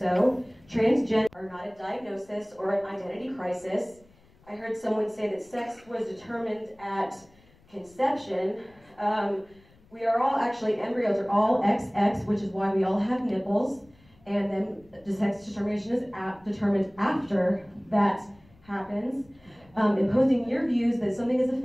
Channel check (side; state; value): left; noise; rumble, 29 dB below the sound